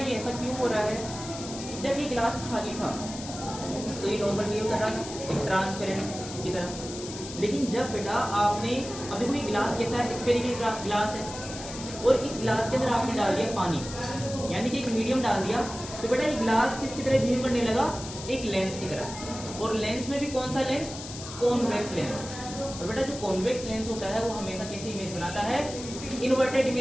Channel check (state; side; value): noise; left; hiss, 11 dB below the sound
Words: ऐसा क्यों हो रहा है कि जब ये गिलास खाली था तो ये नॉर्मल बिहेव कर रहा था एक ट्रांसपेरेंट की तरह। लेकिन जब बेटा आपने, अब देखो ये गिलास कैसा है, स्फेरिकल गिलास है और इस गिलास के अंदर आपने डाल दिया पानी, यानी कि एक मीडियम डाल दिया, तो बेटा ये गिलास किसकी तरह बिहेव करने लगा, एक लेंस की तरह। और लेंस में भी कौन सा लेंस, कॉन्वेक्स लेंस। और बेटा जो कॉन्वेक्स लेंस होता है वो हमेशा कैसी इमेज बनाता है, इन्वर्टेड